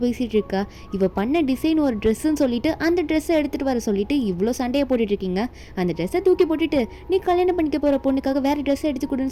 பேசிகிட்டு இருக்கா, இவள் பண்ண டிசைன் ஒரு ட்ரெஸ்ஸுன்னு சொல்லிட்டு அந்த ட்ரெஸ்ஸை எடுத்துகிட்டு வர சொல்லிட்டு இவ்வளோ சண்டையை போட்டுட்டு இருக்கீங்க. அந்த ட்ரெஸ்ஸை தூக்கி போட்டுட்டு நீ கல்யாணம் பண்ணிக்க போகிற பொண்ணுக்காக வேறு ட்ரெஸ்ஸை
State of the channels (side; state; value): both; identical; correlation 1.00